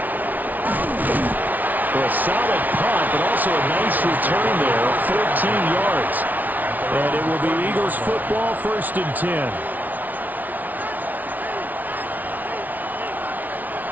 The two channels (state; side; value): late; left; 0.079 ms